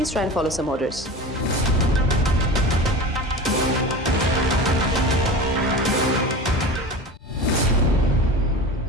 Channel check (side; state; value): both; normal; correlation 0.32